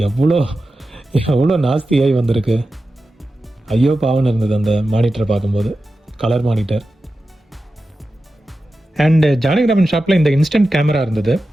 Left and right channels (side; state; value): both; normal; correlation 0.92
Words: எவ்வளோ நாஸ்தியாகி வந்திருக்கு. ஐயோ பாவன்னு இருந்தது அந்த மானிட்டரை பார்க்கும்போது. Colour monitor. அண்ட் ஜானகிராமன் ஷாப்பில் இந்த இன்ஸ்டன்ட் கேமரா இருந்தது.